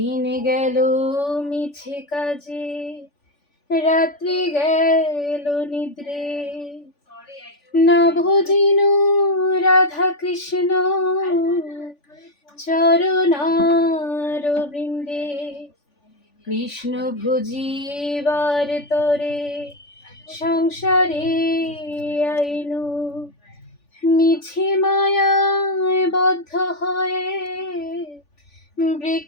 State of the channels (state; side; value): late; right; 3.5 ms